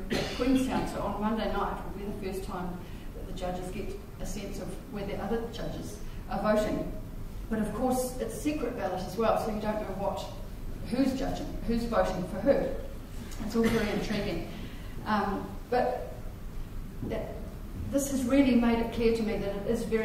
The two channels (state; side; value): identical; both; correlation 1.00